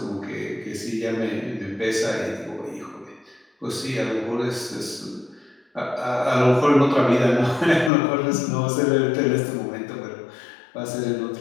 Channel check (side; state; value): right; drops out; at 7.9 s